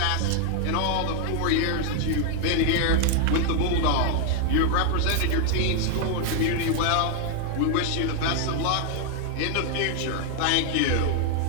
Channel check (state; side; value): different; both; correlation 0.00